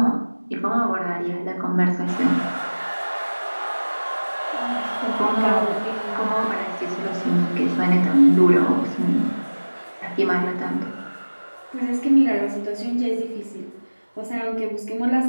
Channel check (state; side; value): inverted; both; correlation -1.00